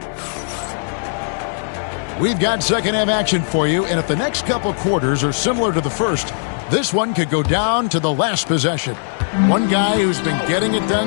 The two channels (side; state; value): right; silent; 67 dB below the other